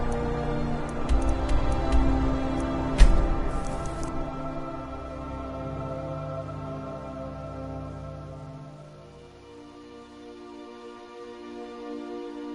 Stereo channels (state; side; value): identical; both; correlation 1.00